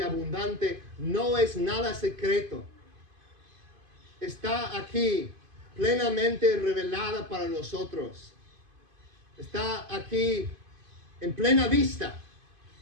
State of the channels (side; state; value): left; late; 2.5 ms